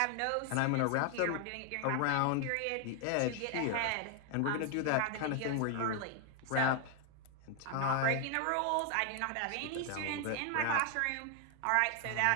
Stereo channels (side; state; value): both; different; correlation 0.00